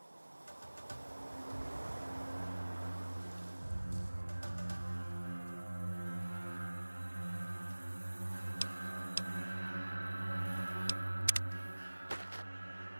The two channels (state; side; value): inverted; both; correlation -1.00